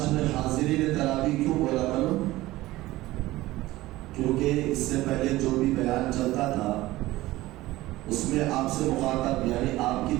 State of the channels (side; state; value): left; quieter; 17.7 dB